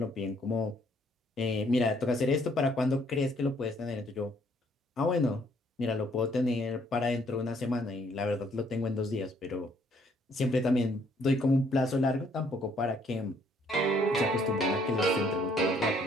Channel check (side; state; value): both; normal; correlation 0.66